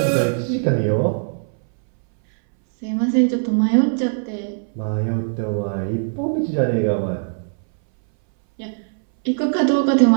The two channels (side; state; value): left; silent; 62 dB below the other